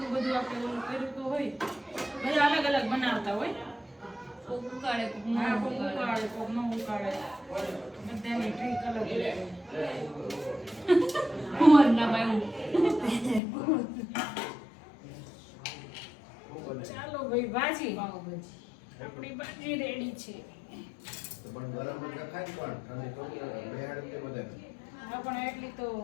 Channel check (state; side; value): drops out; right; at 13.4 s